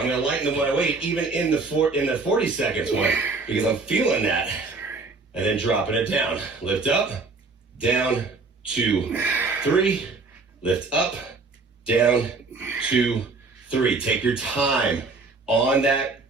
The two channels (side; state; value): left; quieter; 3.9 dB